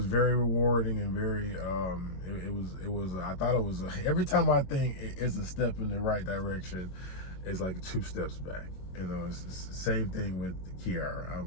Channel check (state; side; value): late; right; 22 ms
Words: very rewarding and very, I thought it was, every time I think it's a step in the right direction, it's like 2 steps back. You know, it's the same thing with Kiara.